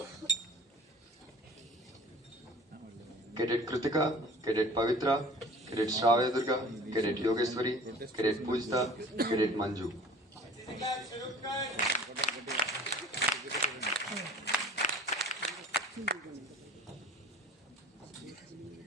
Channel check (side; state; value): both; normal; correlation 0.46